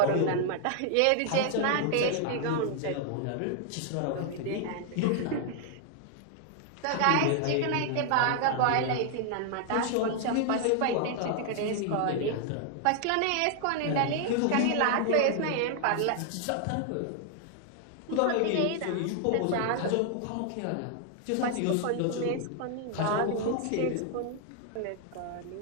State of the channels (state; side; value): different; both; correlation 0.00